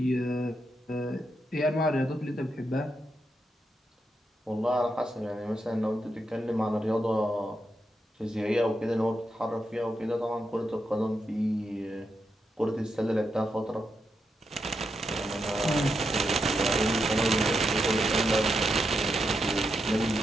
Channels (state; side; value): normal; both; correlation 0.84